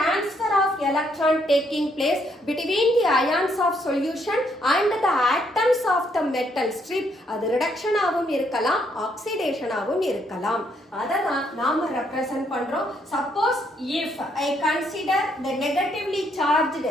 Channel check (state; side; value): normal; both; correlation 0.72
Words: of electron taking place between the ions of solution and the atoms of the metal strip அது reduction ஆகவும் இருக்கலாம், oxidation ஆகவும் இருக்கலாம். அததான் நாம ரெப்ரசன்ட் பண்றோம். Suppose if I consider the negatively charged